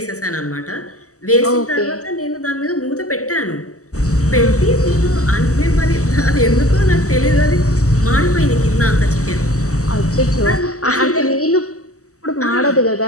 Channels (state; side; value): late; right; 0.66 ms